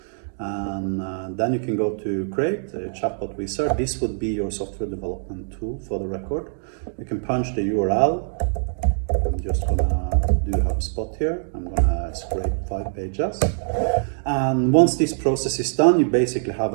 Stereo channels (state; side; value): silent; left; digital silence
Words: and then you can go to create a chatbot wizard. This would be your software development tool for the record. You can punch the URL. I'm just gonna do HubSpot here. I'm gonna scrape 5 pages. And once this process is done, you basically have